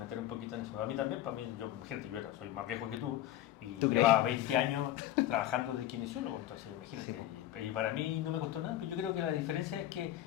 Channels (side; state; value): right; quieter; 13.2 dB